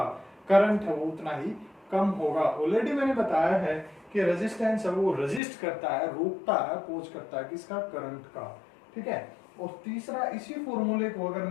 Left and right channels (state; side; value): drops out; right; at 5.4 s